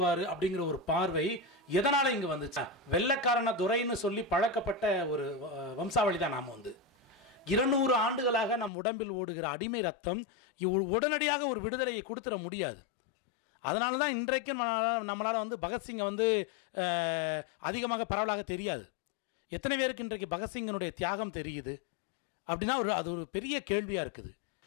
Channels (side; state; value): right; drops out; at 8.7 s